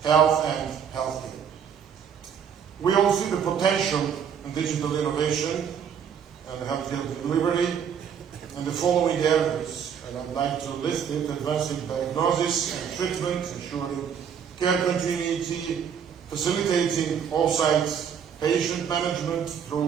health and healthcare. We all see the potential in digital innovation and healthcare delivery in the following areas, and I'd like to list it: advancing diagnosis and treatment, ensuring care continuity, facilitating off-site patient management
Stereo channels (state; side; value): quieter; left; 7.7 dB